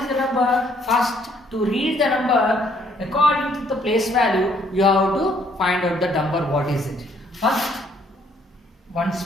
the number? First, to read the number according to the place value, you have to find out the number. What is it? First, ones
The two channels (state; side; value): normal; both; correlation 0.66